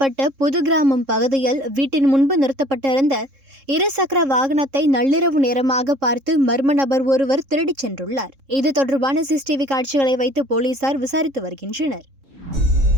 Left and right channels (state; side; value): late; left; 3.7 ms